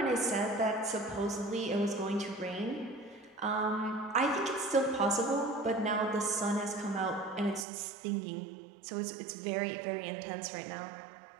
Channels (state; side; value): drops out; left; at 7.7 s